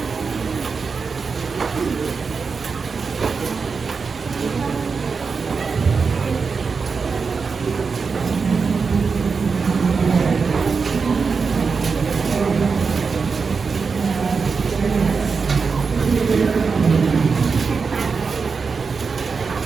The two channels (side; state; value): left; quieter; 5.1 dB